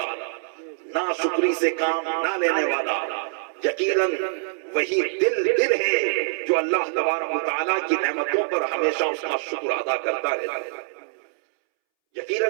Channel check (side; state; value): left; silent; 62 dB below the other